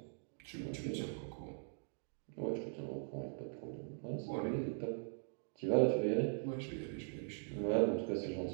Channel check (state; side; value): silent; left; digital silence